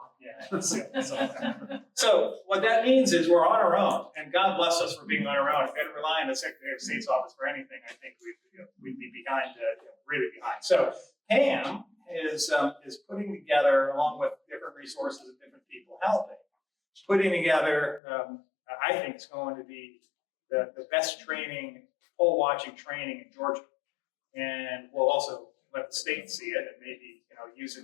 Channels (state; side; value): drops out; right; at 18.0 s